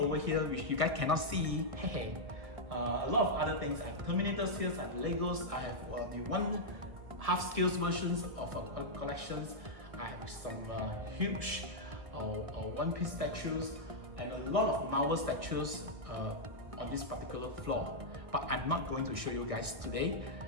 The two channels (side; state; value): left; late; 1.5 ms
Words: here, which you guys cannot see, a lot of other things. I have Terminators here, I have Legos, I have the one half scale versions of collections. I have some huge One Piece statues and a lot of Marvel statues on this particular floor. But I'm not going to show you guys today.